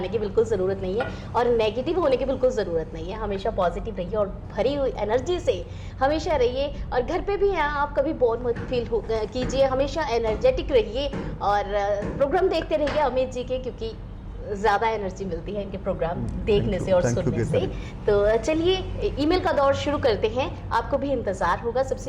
की बिल्कुल ज़रूरत नहीं है और नेगेटिव होने की बिल्कुल ज़रूरत नहीं है। हमेशा पॉजिटिव रहिए और भरी हुई एनर्जी से हमेशा रहिए। और घर पे भी हैं आप, कभी बोर मत फील कीजिए, हमेशा एनर्जेटिक रहिए और प्रोग्राम देखते रहिए अमित जी के, क्योंकि ज़्यादा एनर्जी मिलती है इनके प्रोग्राम देखने से और सुनने से। तो चलिए ईमेल का दौर शुरू करते हैं। आपको भी इंतज़ार होगा।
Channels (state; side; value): identical; both; correlation 1.00